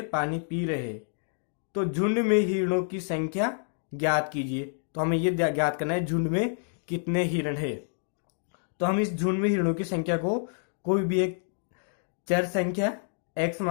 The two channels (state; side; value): silent; right; digital silence